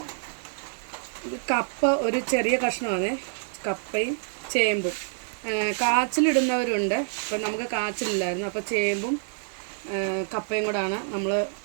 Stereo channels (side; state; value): left; silent; 55 dB below the other